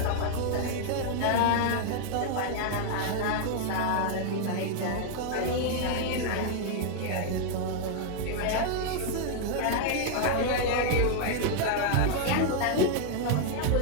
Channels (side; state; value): both; different; correlation 0.00